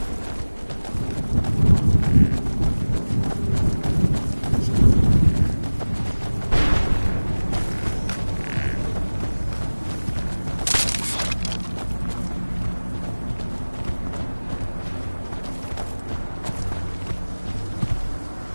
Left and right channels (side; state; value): both; inverted; correlation -1.00